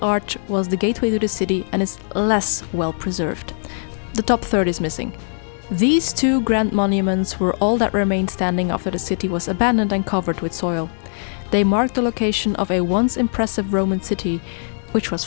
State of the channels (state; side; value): silent; right; digital silence